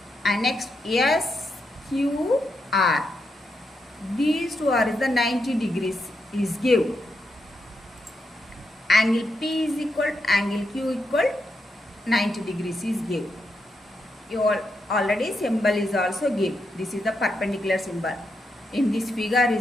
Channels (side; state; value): both; normal; correlation 0.83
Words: And next SQR. These two are the 90 degrees is given. Angle P is equal to angle Q equal 90 degrees is given. You all already symbol is also given. This is the perpendicular symbol. In this figure